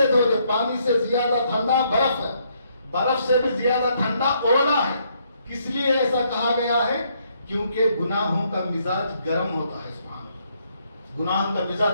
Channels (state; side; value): inverted; both; correlation -0.72